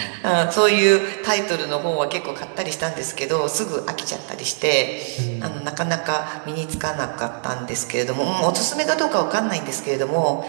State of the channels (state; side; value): silent; left; 64 dB below the other